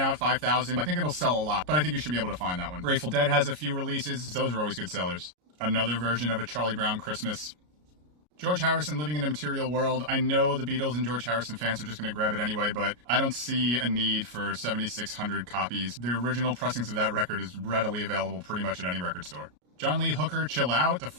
5,000. I think it'll sell a lot, but I think you should be able to find that one. Grateful Dead has a few releases. Those are always good sellers. Another version of a Charlie Brown Christmas. George Harrison, Living in a Material World. I know the Beatles and George Harrison fans are just going to grab it anyway, but I don't see a need for 7,600 copies. The original pressings of that record is readily available pretty much at any record store. John Lee Hooker, Chill Out. The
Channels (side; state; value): left; late; 33 ms